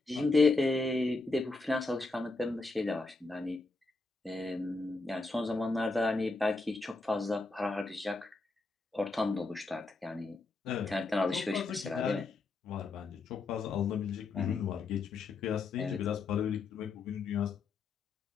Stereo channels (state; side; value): quieter; right; 3.5 dB